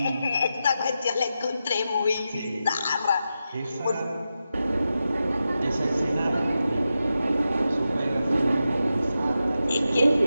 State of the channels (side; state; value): both; inverted; correlation -0.90